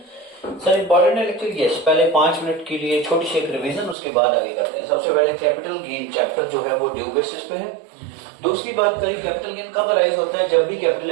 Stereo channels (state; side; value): drops out; left; at 4.0 s